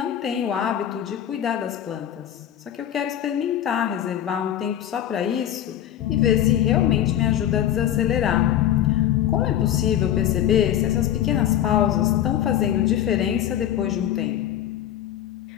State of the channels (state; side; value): quieter; right; 11.2 dB